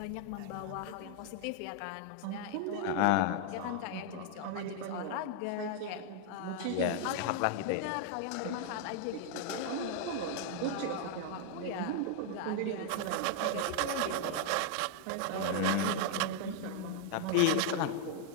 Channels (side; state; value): both; different; correlation 0.00